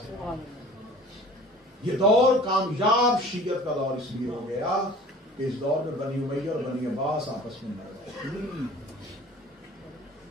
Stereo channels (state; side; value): normal; both; correlation 0.45